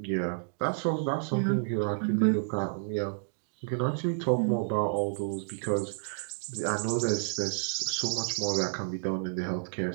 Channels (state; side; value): silent; left; digital silence